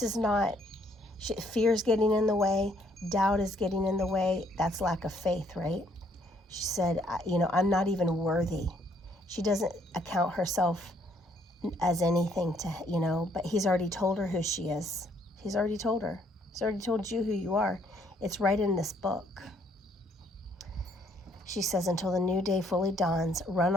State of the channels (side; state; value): both; normal; correlation 0.67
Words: is not, fear's getting in the way, doubt is getting in the way. That's lack of faith, right? She said, I'm not even worthy. She doesn't account herself as anything to, but he's already told her who she is. He's already told her. He's already told you who you are. It's right in this book. She says, until the new day fully dawns, run